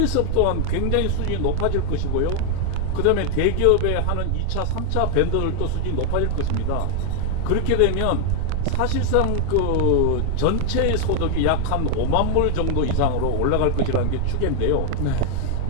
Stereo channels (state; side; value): different; both; correlation 0.00